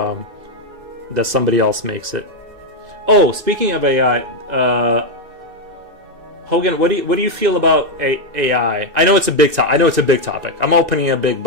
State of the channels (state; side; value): late; left; 1.9 ms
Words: that somebody else makes it. Oh, speaking of AI, Hogan, what do you feel about AI? I know it's a big topic. I'm opening a big